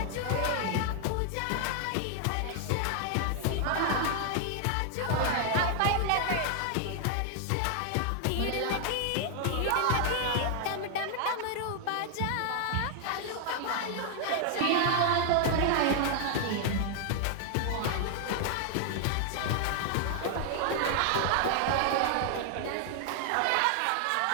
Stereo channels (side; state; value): both; different; correlation 0.00